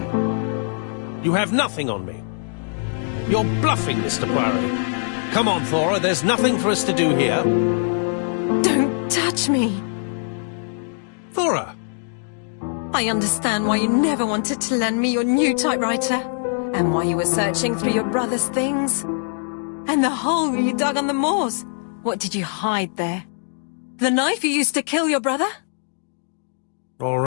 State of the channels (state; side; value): silent; right; digital silence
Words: You have nothing on me. You're bluffing, Mr. Poirot. Come on, Thora, there's nothing for us to do here. Don't touch me. Thora! I understand why you never wanted to lend me your new typewriter, and why you were searching through your brother's things. And the hole you dug on the moors. What did you hide there? The knife you used to kill your brother? All